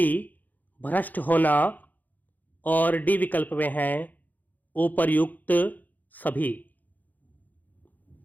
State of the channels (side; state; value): right; late; 0.083 ms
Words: भ्रष्ट होना और डी विकल्प में है उपर्युक्त सभी।